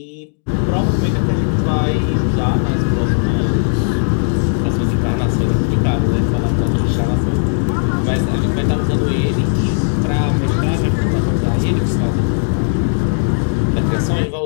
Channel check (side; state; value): right; silent; digital silence